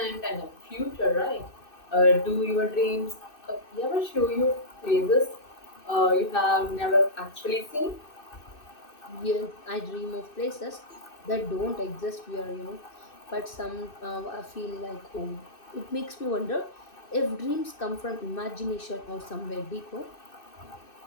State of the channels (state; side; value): late; right; 2.6 ms